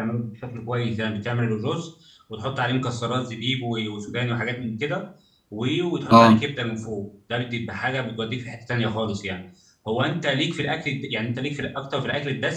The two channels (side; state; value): both; identical; correlation 1.00